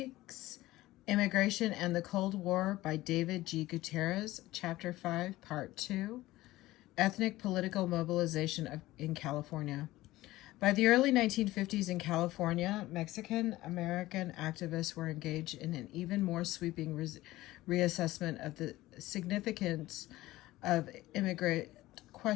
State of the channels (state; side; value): quieter; right; 17.3 dB